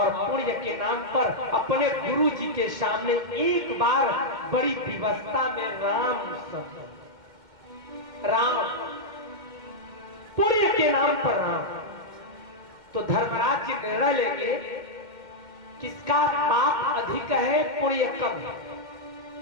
पुण्य के नाम पर अपने गुरु जी के सामने एक बार बड़ी विवस्था में राम शब्द, राम, पुण्य के नाम पर राम। तो धर्मराज जी निर्णय लेंगे किसका पाप अधिक है, पुण्य कम है,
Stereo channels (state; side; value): late; left; 2.1 ms